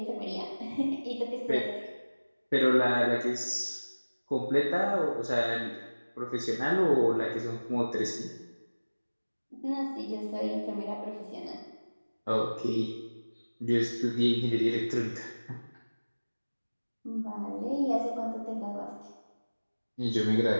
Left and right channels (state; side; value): inverted; both; correlation -1.00